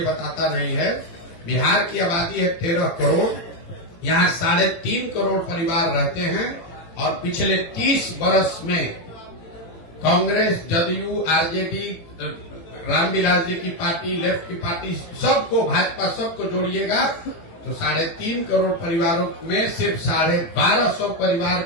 बताता नहीं है। बिहार की आबादी है 13 करोड़, यहाँ 3.5 करोड़ परिवार रहते हैं और पिछले 30 वर्ष में कांग्रेस, जदयू, आरजेडी, रामविलास जी की पार्टी, लेफ्ट की पार्टी, सबको, भाजपा, सबको जोड़िएगा तो 3.5 करोड़ परिवारों में सिर्फ 1250 परिवार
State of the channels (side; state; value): right; late; 18 ms